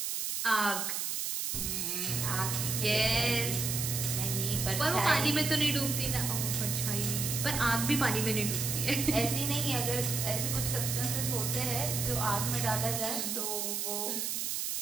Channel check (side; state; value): right; noise; hiss, 1 dB below the sound